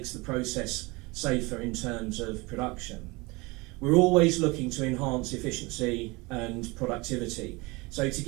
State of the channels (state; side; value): quieter; left; 25.0 dB